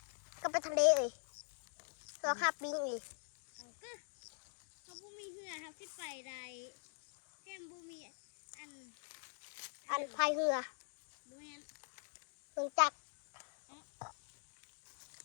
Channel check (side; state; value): right; silent; digital silence